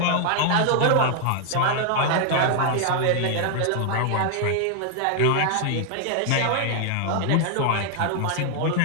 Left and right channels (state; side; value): different; both; correlation 0.00